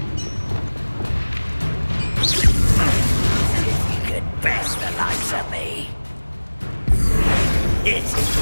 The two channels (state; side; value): inverted; both; correlation -1.00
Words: Best the likes of me. It's